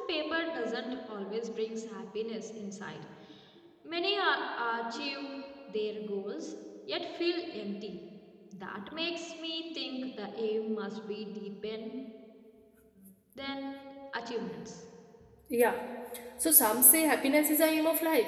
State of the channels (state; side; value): identical; both; correlation 1.00